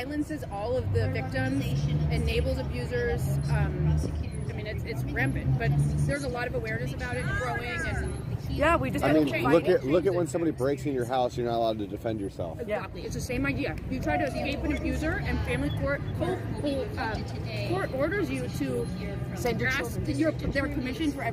all of the victims, enables abusers. I mean, it's rampant, but there's a lot of awareness about it growing. And we just. I mean, look at when somebody breaks in your house, you're not allowed to defend yourself. Exactly, it's the same idea. You try to escape an abuser, and family court orders you to send your ask children. their permission for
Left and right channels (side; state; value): both; identical; correlation 1.00